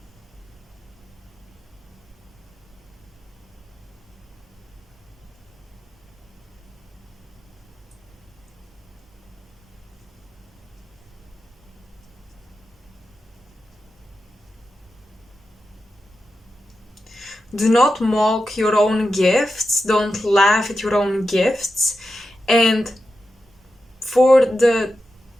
Do not mock your own gifts, don't laugh at your own gifts, and for the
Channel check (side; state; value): both; normal; correlation 0.90